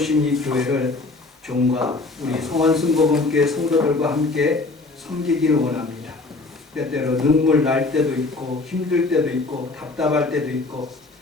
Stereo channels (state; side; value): quieter; right; 3.5 dB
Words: 이 교회를 종과 우리 성원순복음교회 성도들과 함께 섬기기를 원합니다. 때때로 눈물 날 때도 있고 힘들 때도 있고 답답할 때도 있고